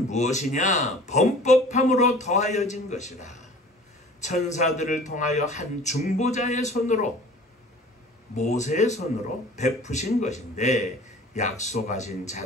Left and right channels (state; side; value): normal; both; correlation 0.46